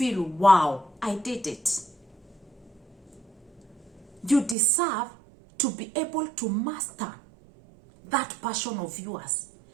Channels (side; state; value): left; drops out; at 4.5 s